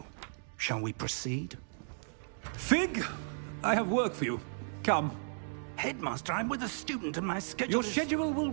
shall we proceed? Fig! I have work for you. Come. Headmaster, I'm with a student and my schedule Your is... schedule will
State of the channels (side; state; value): left; silent; digital silence